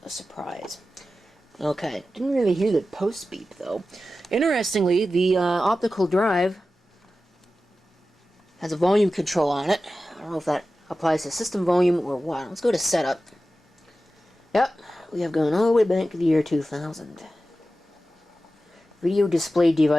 a surprise. Okay, didn't really hear the post beep though. Interestingly, the optical drive has a volume control on it. I don't know if that applies to system volume or what. Let's go to setup. Yep, we have gone all the way back to the year 2000. Video display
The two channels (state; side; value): normal; both; correlation 0.93